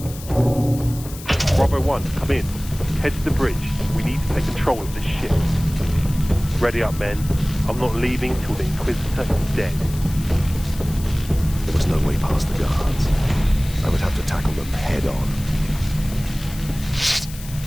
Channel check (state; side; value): noise; left; hiss, 15 dB below the sound